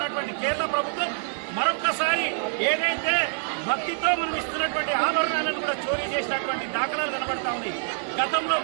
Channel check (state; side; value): silent; left; digital silence